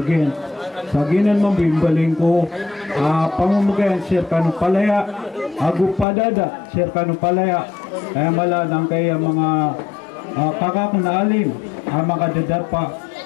Sa ginan mambimbaling ko, pamumugayan, sir kanong palaya, agu padada, sir kanong palaya, kaya mala ng kaya mga kakak na alim, mga dadapa,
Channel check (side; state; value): right; drops out; at 6.1 s